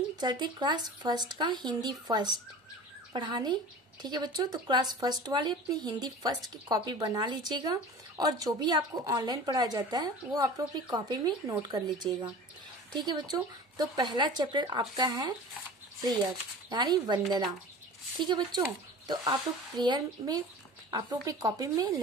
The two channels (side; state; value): both; normal; correlation 0.37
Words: चलते क्लास फर्स्ट का हिंदी फर्स्ट पढ़ाने। ठीक है बच्चों, तो क्लास फर्स्ट वाले अपनी हिंदी फर्स्ट की कॉपी बना लीजिएगा और जो भी आपको ऑनलाइन पढ़ाया जाता है वो आप लोग अपनी कॉपी में नोट कर लीजिएगा। ठीक है बच्चों, तो पहला चैप्टर आपका है प्रेयर यानी वंदना। ठीक है बच्चों, तो आप लोग प्रेयर में आप लोग अपनी कॉपी में